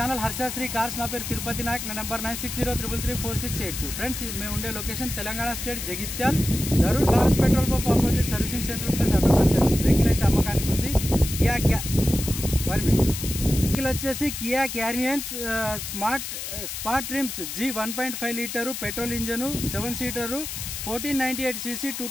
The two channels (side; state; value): left; noise; hiss, 6 dB below the sound